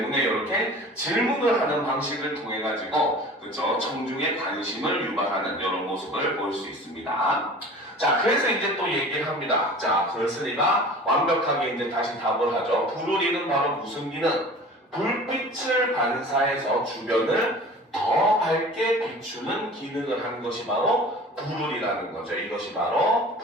이렇게 질문을 하는 방식을 통해 가지고, 그죠? 청중의 관심을 유발하는 이런 모습을 볼 수 있습니다. 자, 그래서 이제 또 얘기를 합니다. 자, 그렇으니까 완벽하게 이제 다시 답을 하죠. 부르리는 바로 무슨 기능? 불빛을 반사해서 주변을 더 밝게 비추는 기능을 한 것이 바로 부르리라는 거죠. 이것이 바로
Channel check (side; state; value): both; normal; correlation 0.41